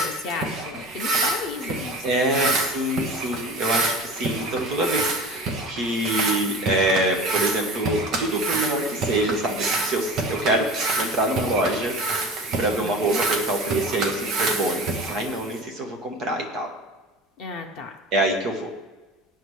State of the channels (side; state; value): both; normal; correlation 0.36